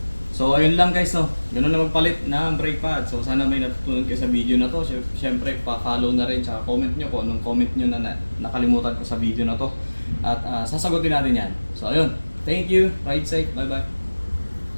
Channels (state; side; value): inverted; both; correlation -1.00